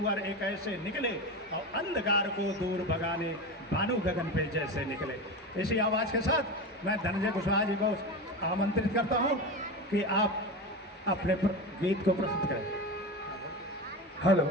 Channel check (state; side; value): normal; both; correlation 0.23